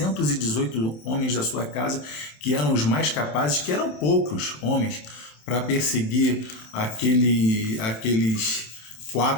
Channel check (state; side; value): late; right; 27 ms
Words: homens da sua casa, que eram os mais capazes, que eram poucos homens, para perseguir aqueles